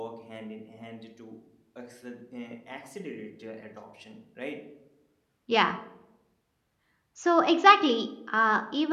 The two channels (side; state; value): both; identical; correlation 1.00